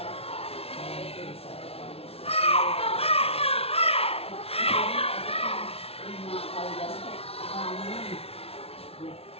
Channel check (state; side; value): late; right; 0.29 ms